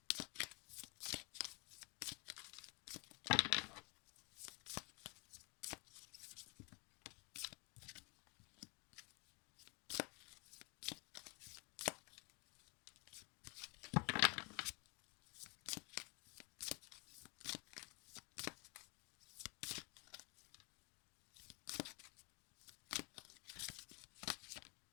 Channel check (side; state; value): right; quieter; 31.4 dB